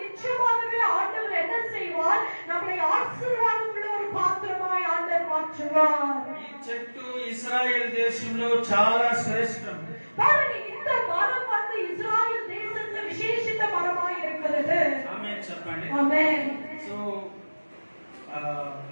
ஆண்டவர் என்ன செய்வார்? நம்மை ஆசீர்வாதம் உள்ள ஒரு பாத்திரமாய் ஆண்டவர் மாற்றுவார். ఈ చెట్టు ఇశ్రాయేల్ దేశంలో చాలా శ్రేష్టం. பாருங்க, இந்த மரம் வந்து இஸ்ராயேல் தேசத்துல விசேஷித்த மரமாய் இருக்கிறது. ఆమేన్ చెప్పండి. ஆமென். సో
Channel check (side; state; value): both; inverted; correlation -1.00